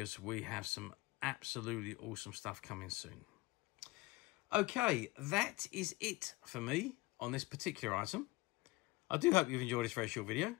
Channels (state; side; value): quieter; right; 22.1 dB